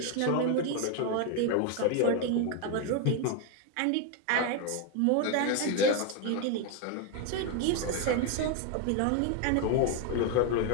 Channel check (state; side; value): different; both; correlation 0.01